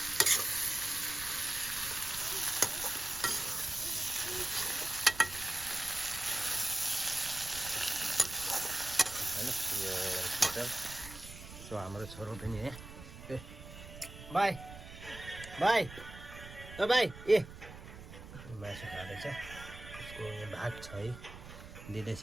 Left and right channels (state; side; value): noise; right; rumble, 14 dB below the sound